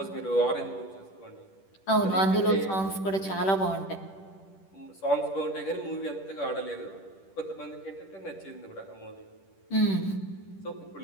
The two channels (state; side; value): late; right; 10 ms